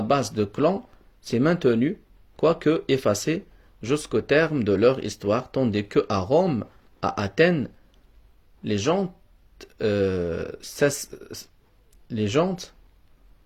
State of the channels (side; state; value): both; identical; correlation 1.00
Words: de clans s'est maintenue, quoique effacée, jusqu'au terme de leur histoire, tandis que à Rome, à Athènes, les gens